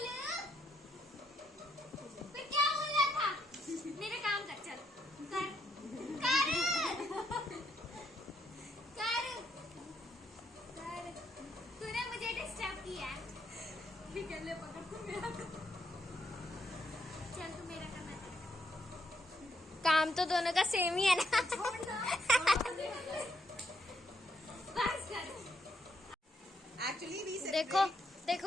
फिर क्या बोल रहा था? मेरा काम कर चल. कर. कर. कर. कर. तूने मुझे डिस्टर्ब किया. ठीक है ले पकड़ तू मेरा. चल तू मेरा करना. काम तो दोनों का सेम ही है ना. बस कर. Actually we देखो देखो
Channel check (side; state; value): both; normal; correlation 0.76